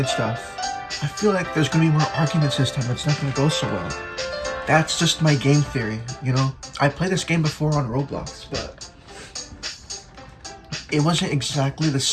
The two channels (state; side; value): identical; both; correlation 1.00